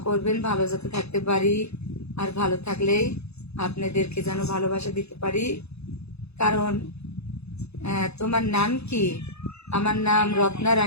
করবেন ভালো যাতে থাকতে পারি, আর ভালো থাকলেই আপনাদেরকে যেন ভালোবাসা দিতে পারি। কারণ তোমার নাম কি? আমার নাম রত্না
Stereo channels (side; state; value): right; late; 0.79 ms